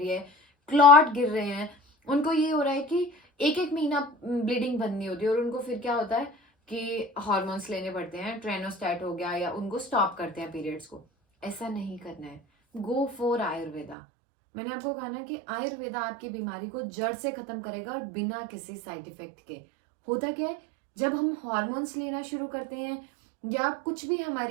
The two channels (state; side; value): drops out; left; at 14.0 s